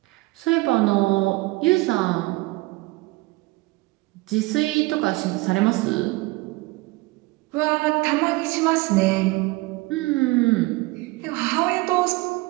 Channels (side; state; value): left; quieter; 22.3 dB